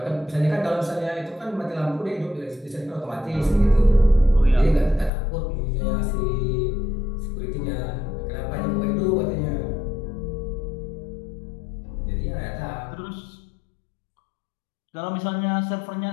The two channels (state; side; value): drops out; right; at 5.1 s